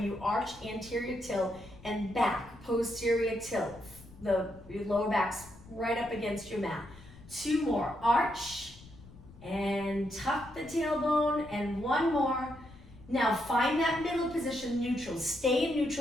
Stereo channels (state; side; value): noise; left; rumble, 20 dB below the sound